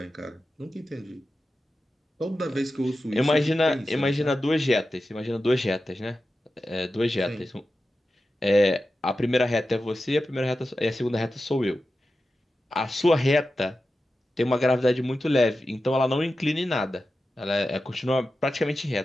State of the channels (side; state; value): both; normal; correlation 0.92